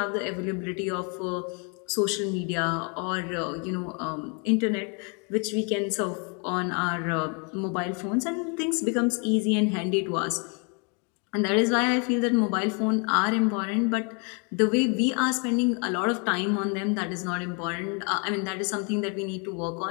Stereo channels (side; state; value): right; quieter; 35.7 dB